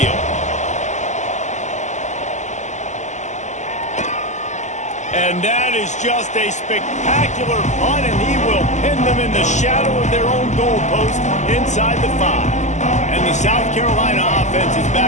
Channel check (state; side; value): late; right; 0.34 ms